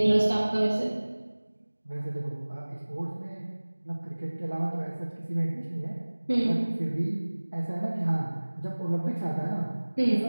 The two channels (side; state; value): both; inverted; correlation -1.00